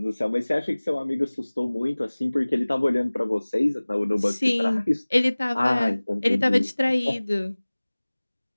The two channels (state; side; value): inverted; both; correlation -1.00